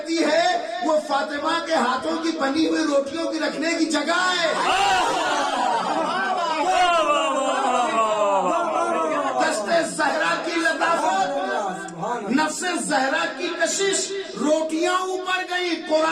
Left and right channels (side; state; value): both; identical; correlation 1.00